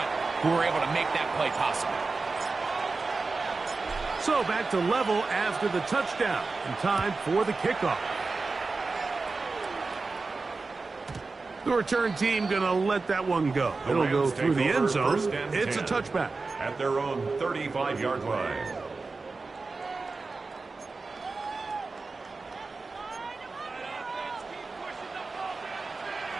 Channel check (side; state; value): left; quieter; 3.9 dB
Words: who were able to make that play possible. So back to level after the touchdown, and time for the kickoff. The return team going to let that one go. It'll go through the end zone. It's a touchback. At their own 35-yard line.